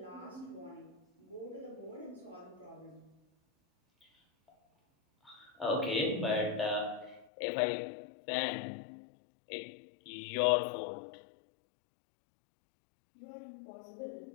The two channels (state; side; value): drops out; right; at 7.2 s